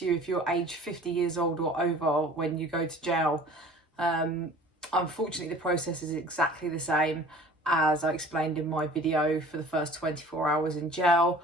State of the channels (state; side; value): normal; both; correlation 0.46